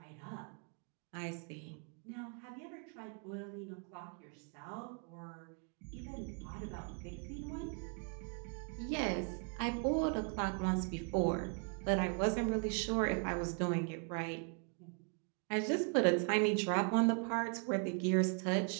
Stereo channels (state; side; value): quieter; left; 39.9 dB